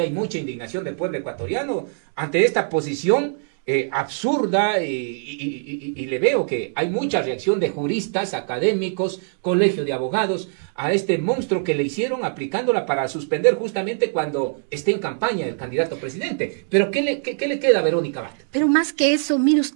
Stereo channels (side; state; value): left; silent; digital silence